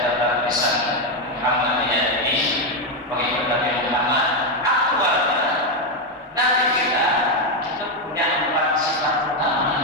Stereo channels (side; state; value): both; normal; correlation 0.06